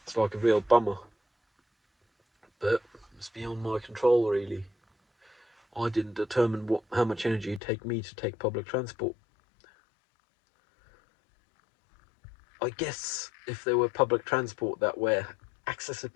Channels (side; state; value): right; drops out; at 7.6 s